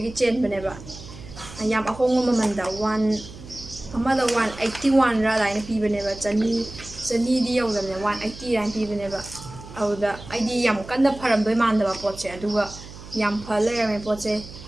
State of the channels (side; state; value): right; noise; hum, 16 dB below the sound